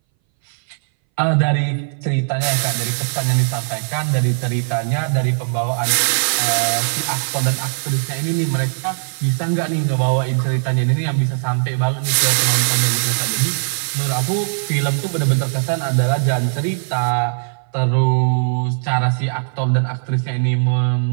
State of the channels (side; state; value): left; silent; 62 dB below the other